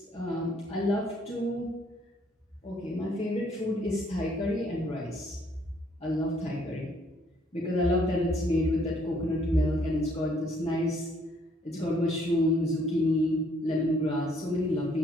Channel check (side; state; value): both; normal; correlation 0.65